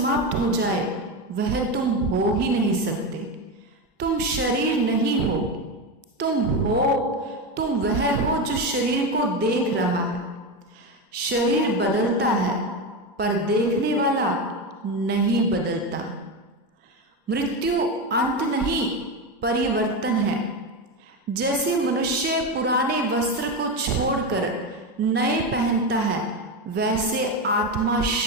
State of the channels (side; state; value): both; normal; correlation 0.15